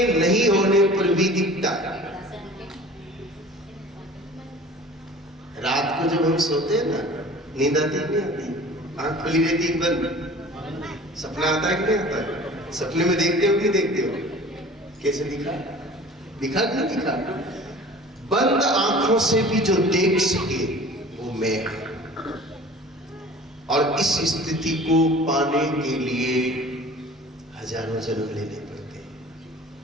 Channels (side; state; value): both; normal; correlation 0.44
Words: नहीं होने पर भी दिखता है। रात को जब हम सोते हैं ना, नींद आती है नहीं आती? आंख खुली रहती है बंद, सपना आता है कि नहीं आता है? सपने में देखते हो कि नहीं देखते हो? कैसे दिखा? दिखा कि नहीं दिखा? बंद आंखों से भी जो देख सके वो मैं है। और इस स्थिति को पाने के लिए हजारों जन्म लेने पड़ते हैं,